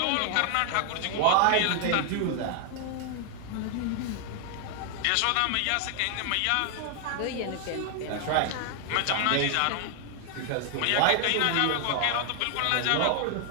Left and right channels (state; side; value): different; both; correlation 0.00